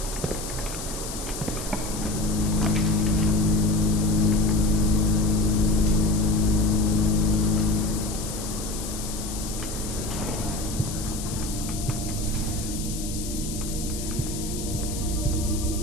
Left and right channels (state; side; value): noise; left; hiss, 9 dB below the sound